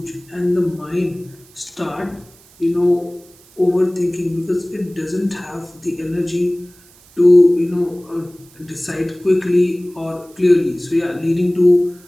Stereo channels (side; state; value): right; noise; hiss, 27 dB below the sound